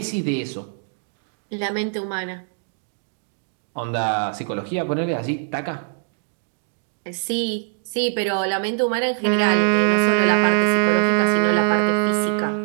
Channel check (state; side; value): silent; left; 64 dB below the other